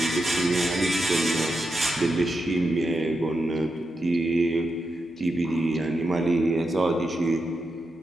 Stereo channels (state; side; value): normal; both; correlation 0.87